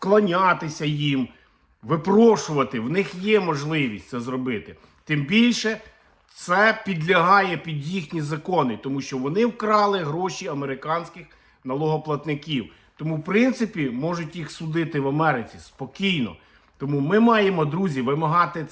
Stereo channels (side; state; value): both; identical; correlation 1.00